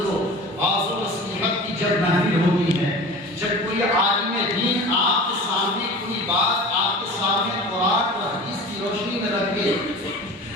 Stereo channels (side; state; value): both; normal; correlation 0.37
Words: واعظ و نصیحت کی جب محفل ہوتی ہے، جب کوئی عالم دین آپ کے سامنے کوئی بات آپ کے سامنے قرآن اور حدیث کی روشنی میں رکھے